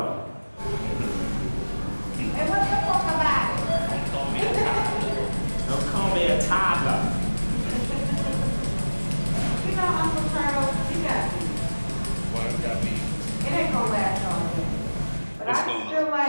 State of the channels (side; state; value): both; inverted; correlation -1.00